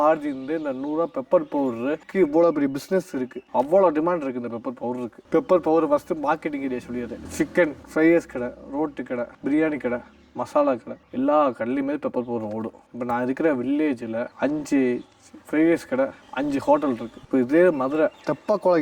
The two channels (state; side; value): identical; both; correlation 1.00